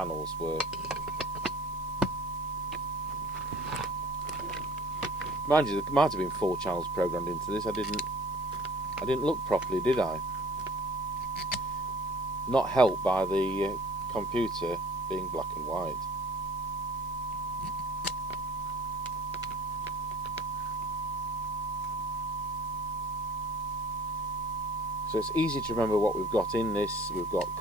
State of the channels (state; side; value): noise; left; hiss, 22 dB below the sound